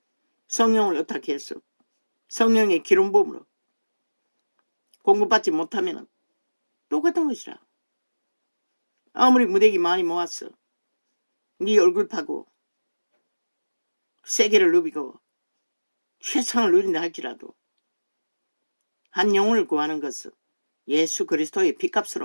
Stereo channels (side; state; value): both; inverted; correlation -1.00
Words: 성령을 어떻게 했어? 성령의 기름부음으로 공급받지 못하면 똑같은 것이라. 아무리 무대기 많이 모았어. 네 얼굴 파고 세계를 누비고 최상을 누린다 할지라도 한 영혼을 구하는 것은 예수 그리스도의